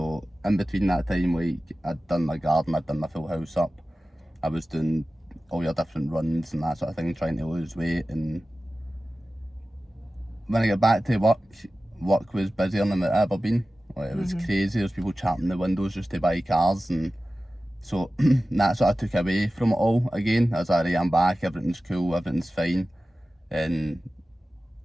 in between that time, like, I'd done my garden, I'd done my full house up, I was doing all your different runs and that sort of thing, trying to lose weight. And when I got back to work was busier than it ever been. Like, it was crazy. There was people champing the windows just to buy cars, and so that sort of took away from it all again. I was like, right, I'm back, everything's cool, everything's fine. And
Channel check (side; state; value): both; normal; correlation 0.96